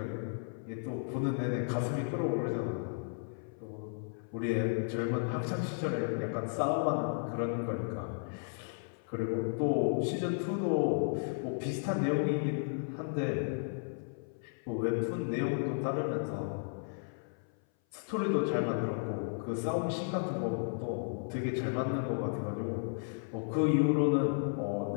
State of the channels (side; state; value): right; silent; 55 dB below the other